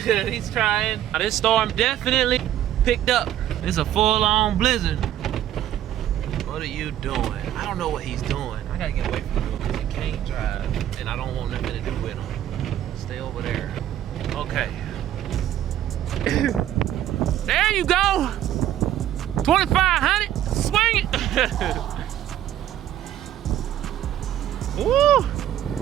trying. Now, this storm definitely picked up. It's a full-on blizzard. What are you doing? I don't know what he's doing. I gotta get away from him because he can't drive, and I don't want nothing to do with him. Stay over there. Okay. There you go. 2,500. Swing it. Woo.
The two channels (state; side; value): quieter; left; 11.9 dB